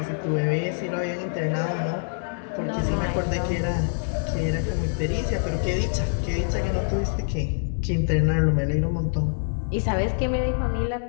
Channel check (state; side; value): silent; right; 62 dB below the other